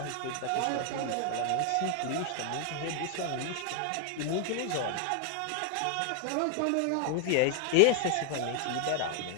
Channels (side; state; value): both; different; correlation 0.00